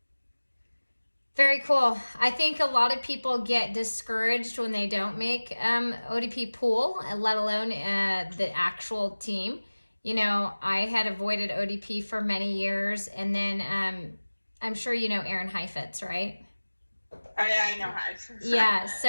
Very cool. I think a lot of people get discouraged when they don't make ODP pool, let alone the actual team. You know, I had avoided ODP for many years, and then I'm sure you know Aaron Heifetz, right? Oh, yeah, I know Heif. Yeah, so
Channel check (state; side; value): inverted; both; correlation -1.00